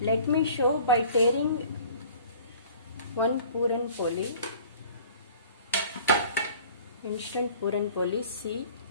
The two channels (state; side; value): inverted; both; correlation -0.49